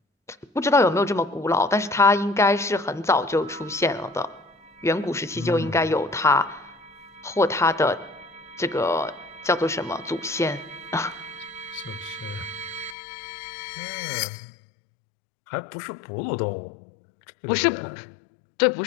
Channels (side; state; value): right; drops out; at 13.0 s